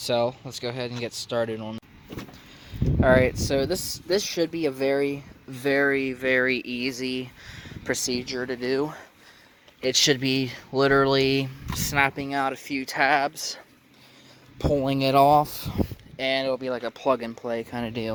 let's go ahead and get started on it. Alright, so this should be a very, very, very easy procedure to do. It should be literally snapping out a few tabs, pulling it off, and it'll be like a plug and play kind of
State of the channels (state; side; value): identical; both; correlation 1.00